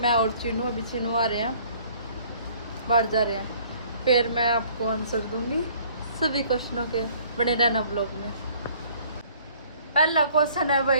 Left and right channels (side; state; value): both; inverted; correlation -0.57